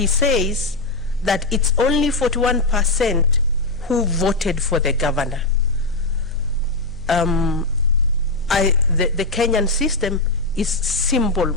says that it's only 41% who voted for the governor. The Kenyan system is simple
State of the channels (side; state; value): right; quieter; 3.0 dB